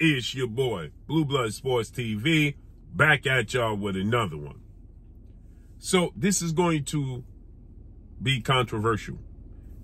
your boy, Blue Blood Sports TV, back at y'all with another one. So this is going to be controversial.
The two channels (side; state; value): both; identical; correlation 1.00